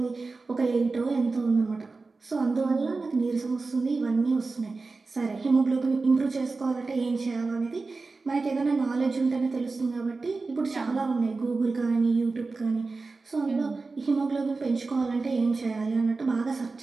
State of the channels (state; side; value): quieter; left; 3.9 dB